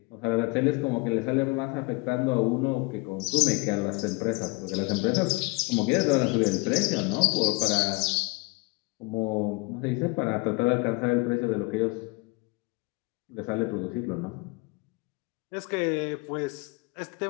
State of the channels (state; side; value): quieter; right; 25.4 dB